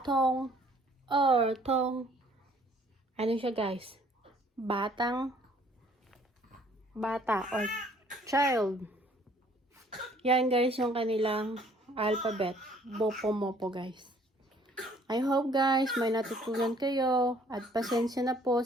童, ano siya guys? Bata or child. Yan guys yung kanilang alphabet. Bopo-mopo guys. I hope guys may natutunan kayo at pasensya na po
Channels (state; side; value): normal; both; correlation 0.59